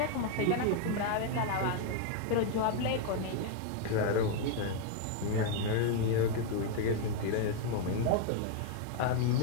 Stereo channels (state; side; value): different; both; correlation 0.00